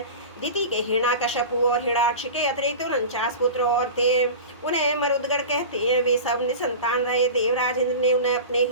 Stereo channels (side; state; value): both; inverted; correlation -0.32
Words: दिति के हिरण्यकश्यपु और हिरण्याक्ष के अतिरिक्त 49 पुत्र और थे। उन्हें मरुदगण कहते हैं। वे सब निसंतान रहे। देवराज इंद्र ने उन्हें अपने